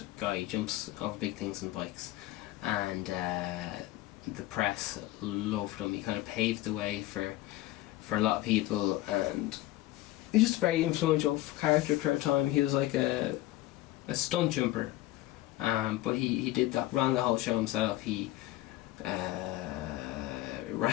guy. He jumps over big things on bikes, and the press loved him. He kind of paved the way for a lot of people, and he's just a very influential character for a time. He was like a stunt jumper, but he did that, ran the whole show himself. He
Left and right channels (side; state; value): right; quieter; 16.6 dB